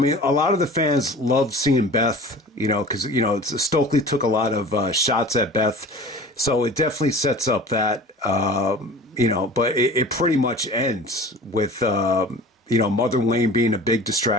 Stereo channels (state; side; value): normal; both; correlation 0.41